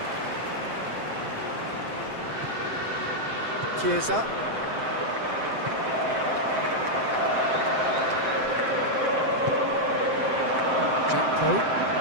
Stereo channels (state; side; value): late; left; 7.7 ms